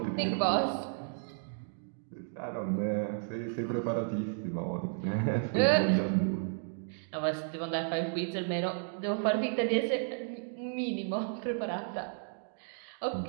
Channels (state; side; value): silent; left; digital silence